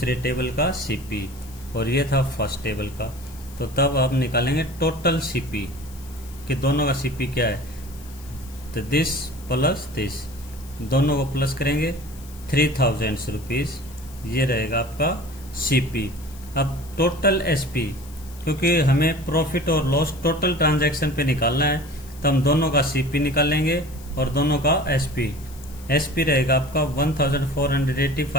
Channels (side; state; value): left; noise; hiss, 21 dB below the sound